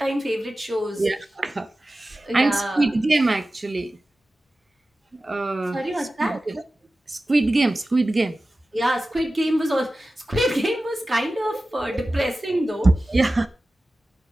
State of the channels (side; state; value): both; normal; correlation 0.95